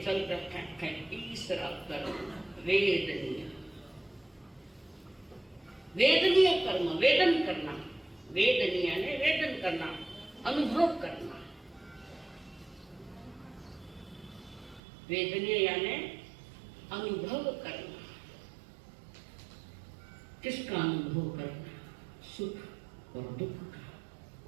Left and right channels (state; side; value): drops out; left; at 14.8 s